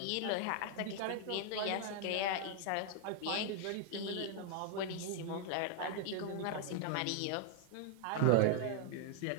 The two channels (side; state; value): both; different; correlation 0.00